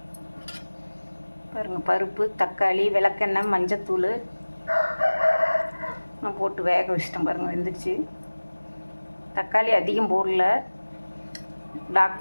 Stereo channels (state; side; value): inverted; both; correlation -1.00